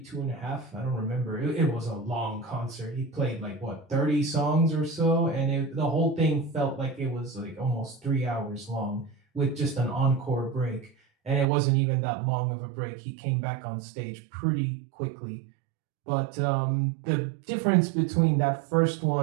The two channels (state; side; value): drops out; left; at 11.5 s